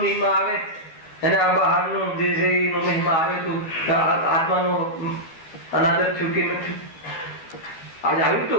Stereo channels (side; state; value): right; late; 12 ms